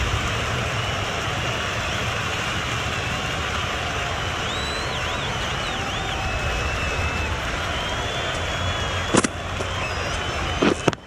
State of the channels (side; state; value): both; identical; correlation 1.00